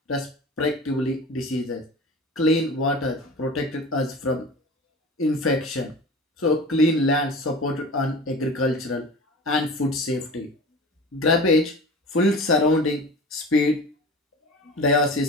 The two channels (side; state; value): both; normal; correlation 0.36